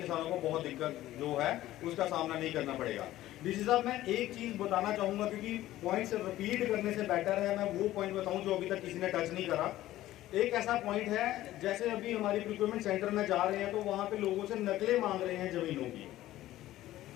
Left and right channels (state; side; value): quieter; right; 14.9 dB